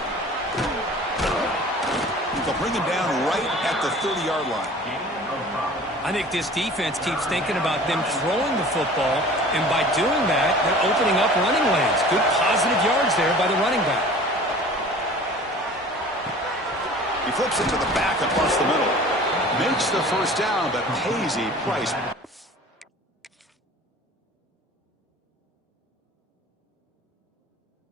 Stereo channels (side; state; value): both; normal; correlation 0.44